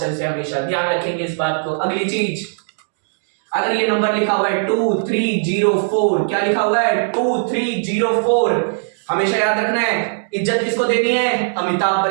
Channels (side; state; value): left; silent; digital silence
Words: से। हमेशा ध्यान रखेंगे इस बात को। अगली चीज, अगर ये नंबर लिखा हुआ है 2304, क्या लिखा हुआ है? 2304। हमेशा याद रखना है इज्जत किसको देनी है? अमिताभ